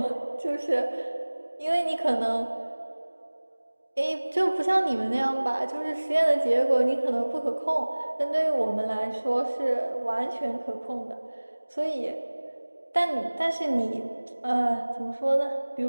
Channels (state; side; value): inverted; both; correlation -1.00